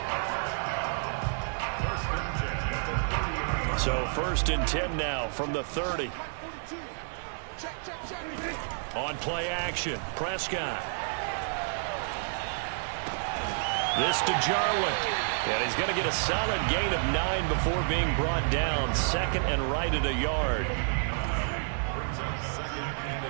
So 1st and 10 now from the 30. On play action, Prescott. This to Jarwin. And he's going to get a solid gain of 9 before being brought down. 2nd and right at a yard.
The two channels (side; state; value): left; silent; 58 dB below the other